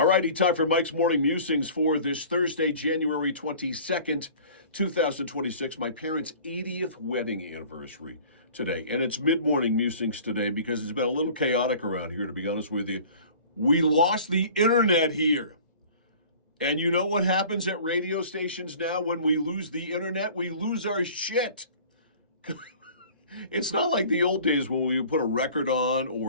righty, time for Mike's Morning Musings for this Thursday, January 22nd, 2026. My parents' 80th wedding anniversary today. And it's mid-morning musings today because it's been a little chaotic around here, to be honest with you. We lost the internet here. And you know what happens at radio stations now when we lose the internet? We lose our shit. It's not like the old days when we would put a record on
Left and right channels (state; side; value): inverted; both; correlation -0.46